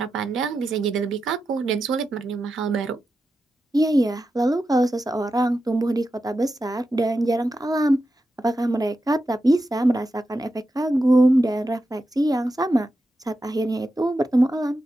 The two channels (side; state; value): both; normal; correlation 0.89